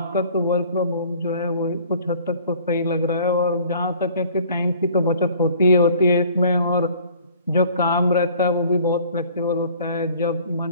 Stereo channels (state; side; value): inverted; both; correlation -0.52